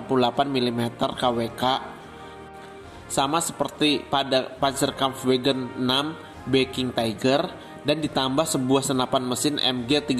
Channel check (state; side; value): identical; both; correlation 1.00